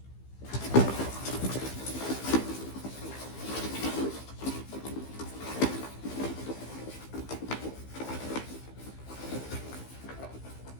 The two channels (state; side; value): late; right; 15 ms